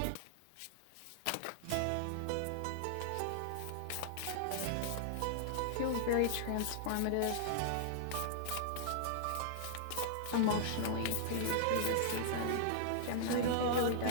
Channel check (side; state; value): both; different; correlation -0.01